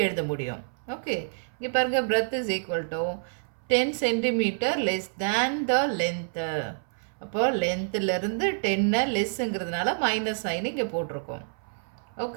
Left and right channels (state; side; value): silent; left; 59 dB below the other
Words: எழுத முடியும். ஓகே, இங்கே பாருங்கள், breadth is equal to 10 centimetre less than the length. அப்போ லென்த்துலேருந்து 10 லெஸ்ஸுங்கிறதுனால மைனஸ் சைன் இங்கே போட்டிருக்கோம்.